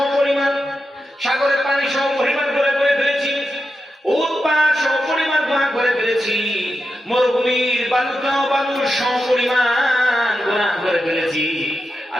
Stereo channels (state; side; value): normal; both; correlation 0.88